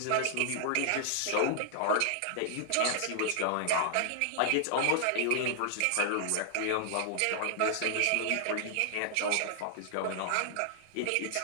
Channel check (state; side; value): different; both; correlation 0.00